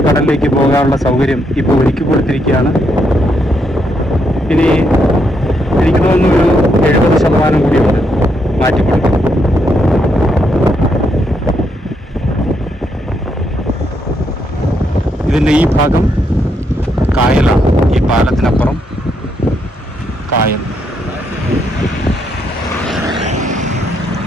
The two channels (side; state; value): both; normal; correlation 0.77